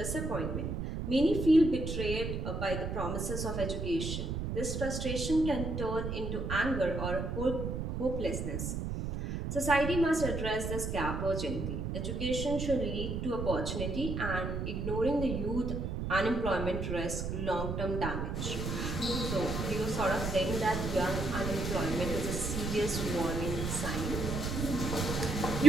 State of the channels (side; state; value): right; noise; rumble, 3 dB below the sound